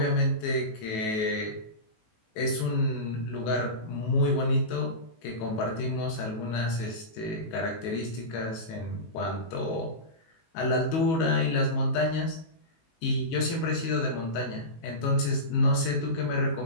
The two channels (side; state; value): right; late; 19 ms